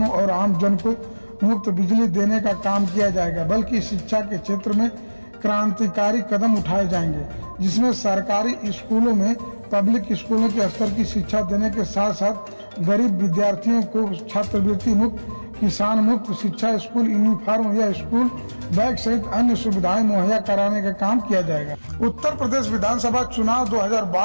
और आम जन को मुफ्त बिजली देने का काम किया जाएगा, बल्कि शिक्षा के क्षेत्र में क्रांतिकारी कदम उठाए जाएंगे, जिसमें सरकारी स्कूलों में पब्लिक स्कूलों के स्तर की शिक्षा देने के साथ साथ गरीब विद्यार्थियों को छात्रवृत्ति मुक्त, किसान मुक्त शिक्षा, स्कूल यूनिफॉर्म या स्कूल बैग सहित अन्य सुविधाएं मुहैया कराने का काम किया जाएगा। उत्तर प्रदेश विधानसभा चुनाव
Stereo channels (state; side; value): inverted; both; correlation -1.00